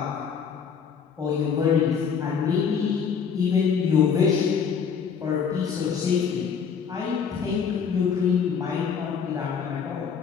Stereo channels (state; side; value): quieter; right; 6.7 dB